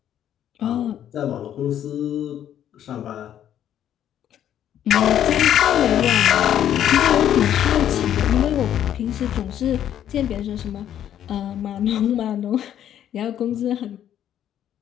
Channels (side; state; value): right; quieter; 10.5 dB